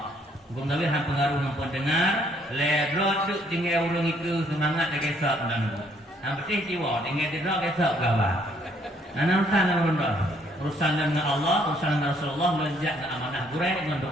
Bukan tapi hang pengaruh nampak dengar, ledrot duk tinggal urung itu semangat lagi esok dan hang betul jiwa tinggal ledrot esok gawa. Urusan dengan urusan dengan Allah, urusan dengan Rasulullah melonjak ke amanah gurai dengan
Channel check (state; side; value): normal; both; correlation 0.66